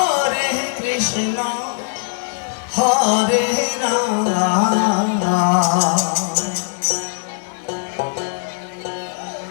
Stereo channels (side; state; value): right; silent; digital silence